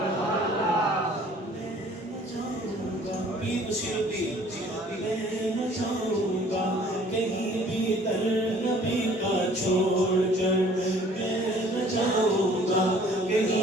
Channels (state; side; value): normal; both; correlation 0.54